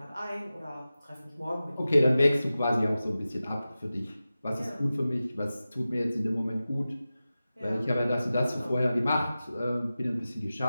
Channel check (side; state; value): both; inverted; correlation -0.95